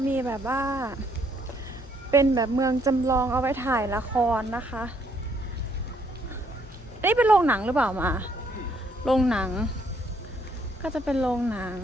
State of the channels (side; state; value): both; normal; correlation 0.68